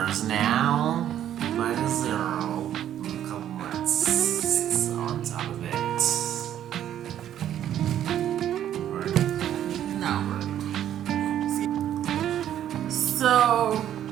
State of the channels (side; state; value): left; quieter; 10.9 dB